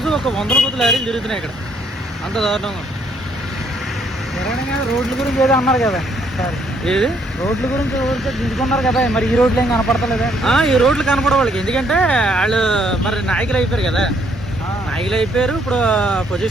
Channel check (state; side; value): normal; both; correlation 0.68